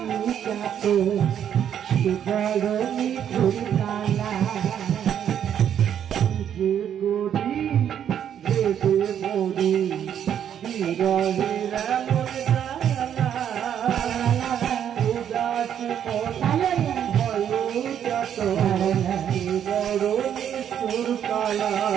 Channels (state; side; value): quieter; left; 9.3 dB